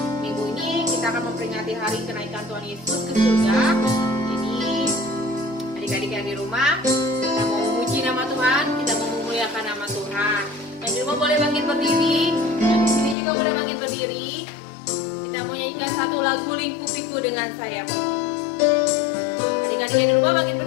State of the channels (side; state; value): right; drops out; at 13.2 s